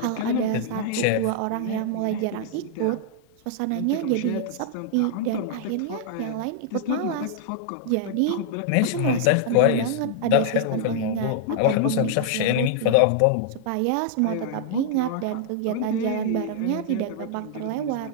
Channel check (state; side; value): different; both; correlation -0.01